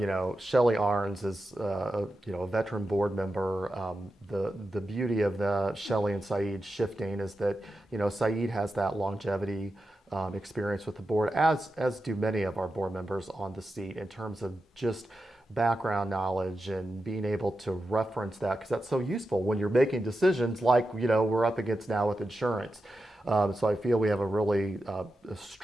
Shelley Arns is a veteran board member. The beauty of the Shelley and Saeed shifting is that Saeed has that longevity experience with the board, as do many of our board members on the seat, in terms of just background knowledge and being able to reference that, because that's so useful when you're making decisions like we're up against now with insurance. So I feel we have a really a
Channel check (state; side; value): normal; both; correlation 0.90